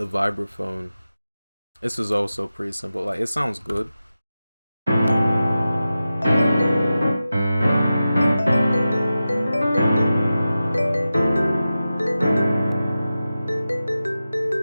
This is also pretty simple. Like it sounds good.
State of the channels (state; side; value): inverted; both; correlation -0.93